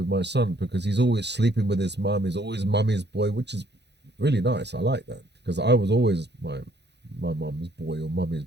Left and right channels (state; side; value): late; left; 0.50 ms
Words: my son because he's always sleeping with his mum. He's always mummy's boy, which is really nice. I like that. because I was always my mum's boy or mummy's